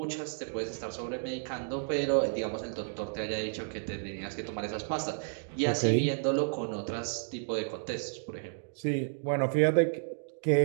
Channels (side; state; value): left; silent; digital silence